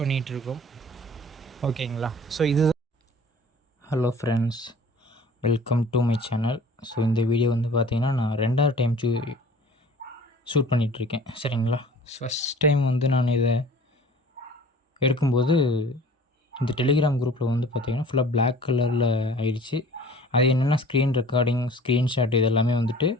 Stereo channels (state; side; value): normal; both; correlation 0.46